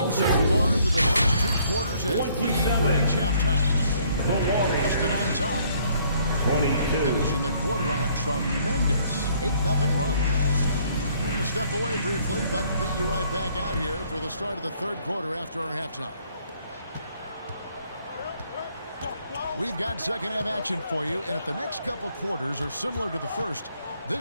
so far through the first 2 quarters as we reach halftime. The Warriors. Boston on top. 22. Finishing the quarter on a tremendous 8-0 run. We're going to step away briefly, but get you right back out here for the start of the 3rd quarter after our halftime. We've got second half action for you, and if the next couple quarters are similar to the first,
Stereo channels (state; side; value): inverted; both; correlation -0.64